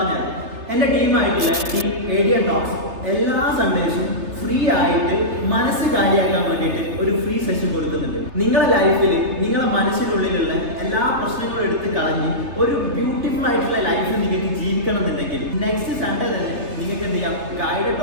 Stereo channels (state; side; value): late; left; 3.3 ms